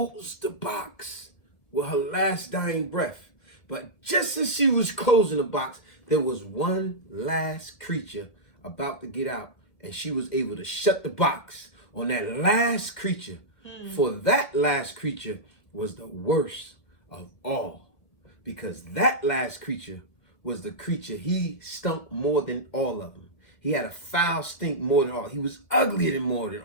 the box with her last dying breath. But just as she was closing the box, there was one last creature about to get out, and she was able to shut the box on that last creature. For that last creature was the worst of all, because that last creature was the creature he stunk more than all of them. He had a foul stink more than all. He was uglier than more than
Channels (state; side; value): late; right; 1.7 ms